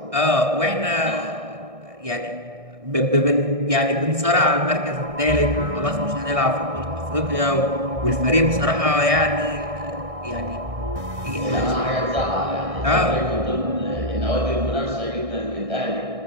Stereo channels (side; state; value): left; late; 1.6 ms